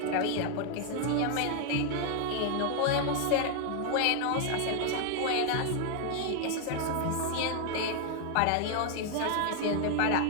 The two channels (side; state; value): both; different; correlation 0.00